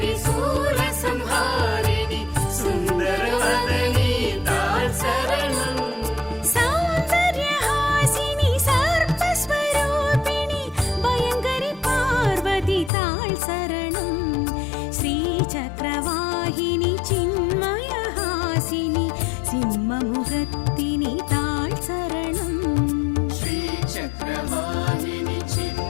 सूरसंहारिणि सुन्दरवदनी ताळ् शरणम् सौन्दर्यहासिनि सर्पस्वरूपिणि भयङ्करि पार्वती ताळ् शरणम् श्रीचक्रवाहिनि चिन्मयहासिनि सिंहमुखत्तिनि ताळ् शरणम् श्रीचक्रवाहिनि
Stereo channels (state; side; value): drops out; right; at 12.9 s